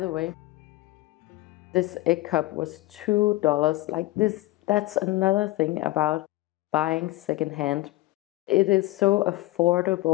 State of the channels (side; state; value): right; quieter; 18.6 dB